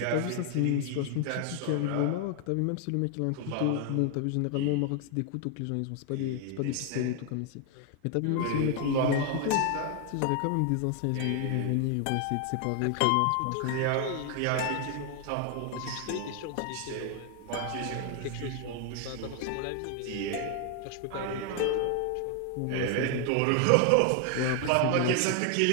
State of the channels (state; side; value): different; both; correlation 0.00